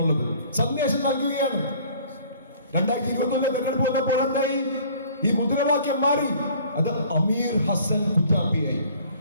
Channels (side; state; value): both; inverted; correlation -0.53